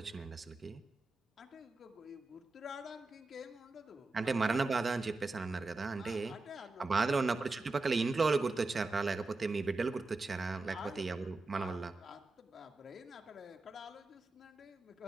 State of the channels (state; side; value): quieter; left; 3.4 dB